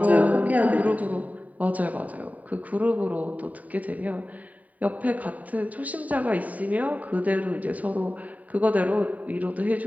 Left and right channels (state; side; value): late; left; 0.072 ms